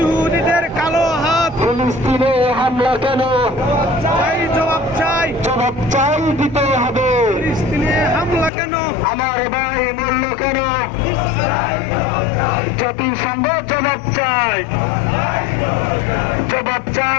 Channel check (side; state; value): right; drops out; at 8.5 s